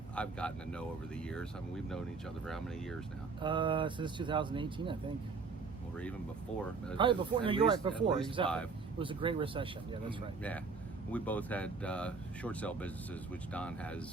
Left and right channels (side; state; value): left; quieter; 4.7 dB